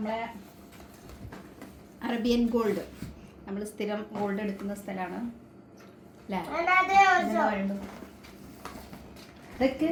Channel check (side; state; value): both; identical; correlation 1.00